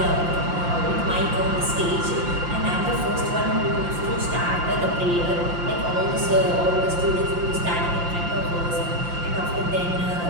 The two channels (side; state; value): left; late; 5.8 ms